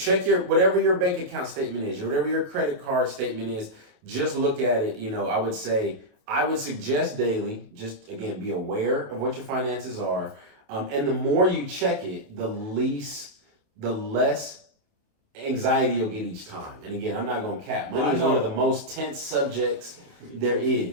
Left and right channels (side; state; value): left; late; 28 ms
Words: whatever your bank account statement is, or whatever your credit card statement is. Just look at it. I would suggest daily, just again, be aware of what your finances are. And the more you check it, the less anxiety you'll get each time. And again, I'm not going to cap. Money is one of the most tense subjects there